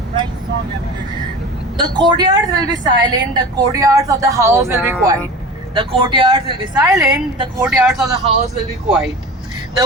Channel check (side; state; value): both; normal; correlation 0.34